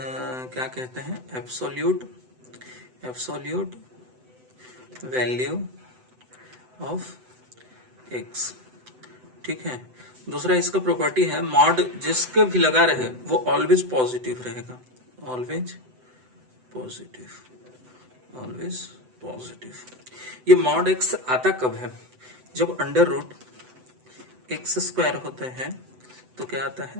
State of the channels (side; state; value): left; late; 7.9 ms